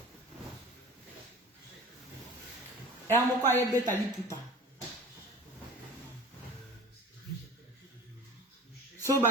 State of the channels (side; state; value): both; normal; correlation 0.40